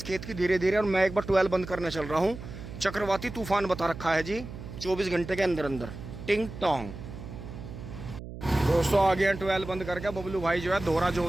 खेत की धीरे धीरे। और मैं एक बार ट्वेल बंद करने चल रहा हूँ। चक्रवाती तूफान बता रखा है जी, 24 घंटे के अंदर अंदर। टिंग टोंग। दोस्तों आ गए हैं ट्वेल बंद करके। बबलू भाई जो है दोहरा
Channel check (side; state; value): right; noise; hum, 11 dB below the sound